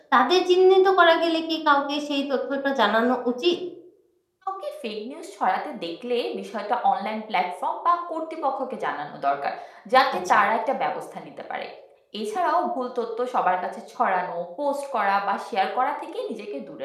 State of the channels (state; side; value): identical; both; correlation 1.00